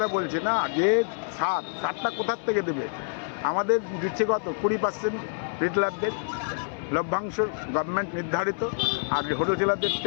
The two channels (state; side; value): silent; right; 59 dB below the other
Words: বলছি না, যে সারটা কোথার থেকে দেবে? আমাদের দিচ্ছে কত 20% রিটেলারদের লভ্যাংশ গভর্নমেন্ট নির্ধারিত, আর হোলসেলারদের